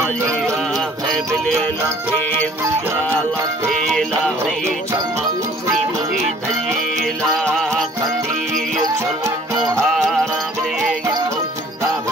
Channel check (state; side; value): normal; both; correlation 0.54